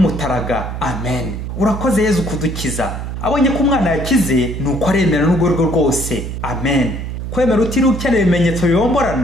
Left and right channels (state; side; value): noise; right; hum, 6 dB below the sound